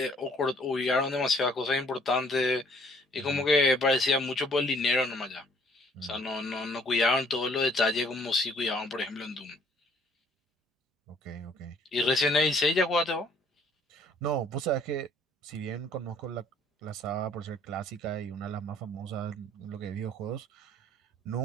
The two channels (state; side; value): normal; both; correlation 0.60